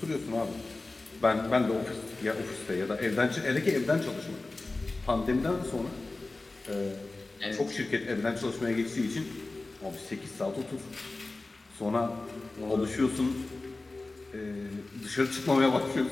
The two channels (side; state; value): right; quieter; 3.2 dB